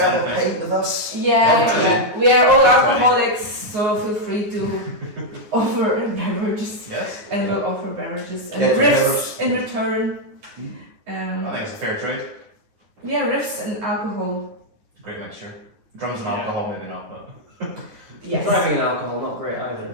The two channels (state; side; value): late; left; 9.8 ms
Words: a anything. pint with us. Yeah. We are all alcoholics, so feel free to offer beverages, Yes. and we'll offer beverages and Yeah, riffs in return. I think it's a fair trade. Yeah, riffs and alcohol. Great mixture. Drums and alcohol, maybe not, but. Yes. Driving alcohol, not great